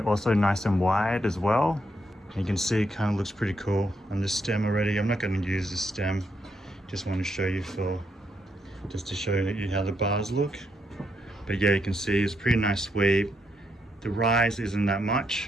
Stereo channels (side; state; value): both; normal; correlation 0.79